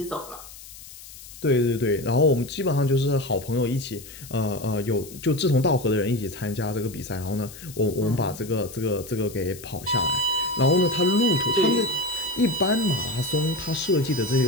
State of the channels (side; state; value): left; noise; hiss, 17 dB below the sound